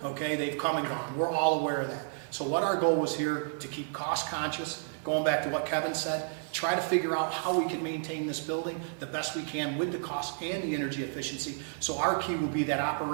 Okay, they've come and gone. We're all aware of that. So what our goal was here, to keep cost conscious, going back to what Kevin said, try to figure out how we can maintain this building the best we can with the cost and the energy efficiency. So our key will be that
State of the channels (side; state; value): left; silent; digital silence